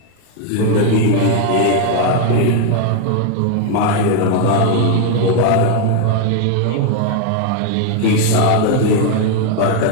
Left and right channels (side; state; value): both; different; correlation 0.00